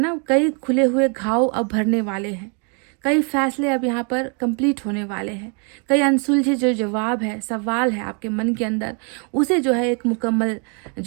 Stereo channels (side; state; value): left; quieter; 37.8 dB